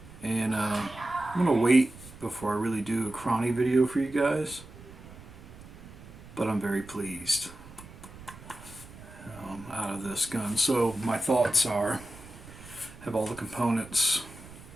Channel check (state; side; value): noise; right; rumble, 18 dB below the sound